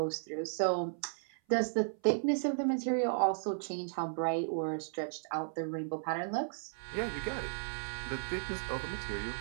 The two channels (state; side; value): silent; left; 54 dB below the other